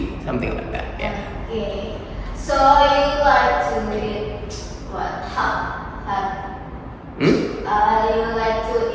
something like that. Yeah. Okay. So you like to eat what? Hot. Hmm? You like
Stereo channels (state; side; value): identical; both; correlation 1.00